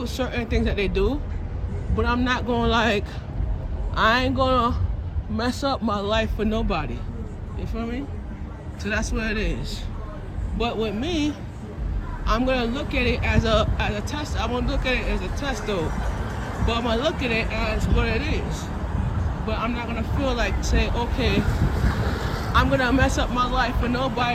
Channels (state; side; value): identical; both; correlation 1.00